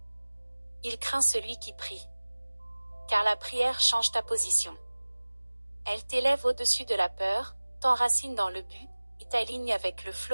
Il craint celui qui prie. Car la prière change ta position. Elle t'élève au-dessus de la peur, t'enracine dans le but, et t'aligne avec le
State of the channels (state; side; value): inverted; both; correlation -1.00